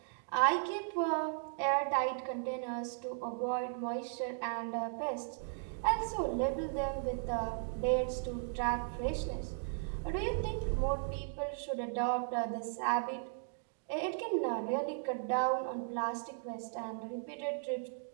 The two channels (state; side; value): silent; left; digital silence